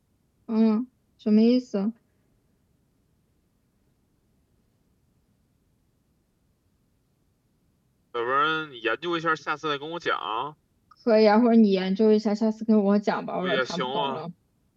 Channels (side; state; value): both; identical; correlation 1.00